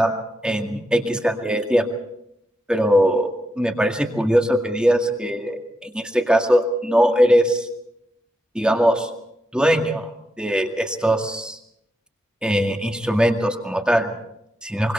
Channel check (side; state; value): both; normal; correlation 0.85